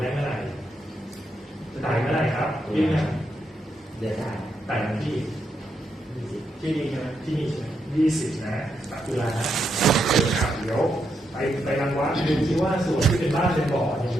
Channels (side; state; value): both; normal; correlation 0.81